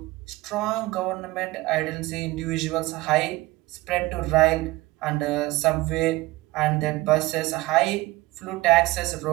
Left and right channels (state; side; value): quieter; left; 20.1 dB